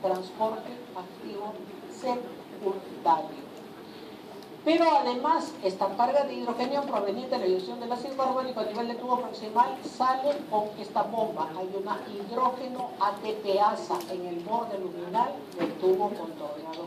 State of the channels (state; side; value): identical; both; correlation 1.00